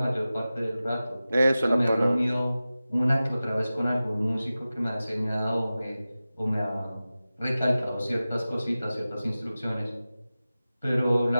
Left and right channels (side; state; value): both; inverted; correlation -0.96